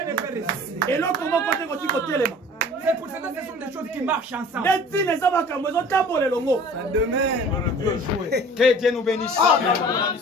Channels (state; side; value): normal; both; correlation 0.45